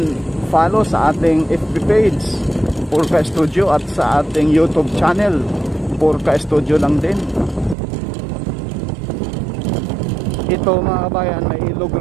follow sa ating FB page Purka Studio at sa ating YouTube channel Purka Studio lang din. Ito mga bayan, may ilog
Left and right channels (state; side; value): drops out; left; at 7.8 s